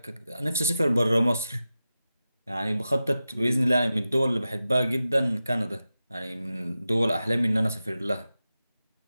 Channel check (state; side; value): inverted; both; correlation -0.93